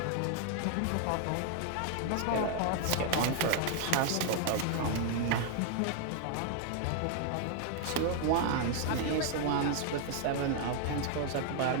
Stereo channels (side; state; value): both; different; correlation 0.00